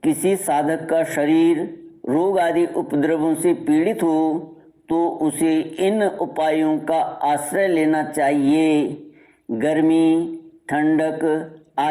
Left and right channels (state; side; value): identical; both; correlation 1.00